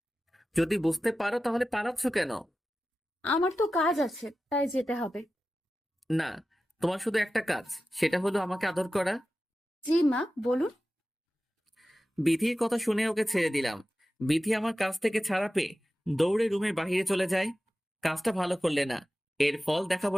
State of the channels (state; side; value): normal; both; correlation 0.94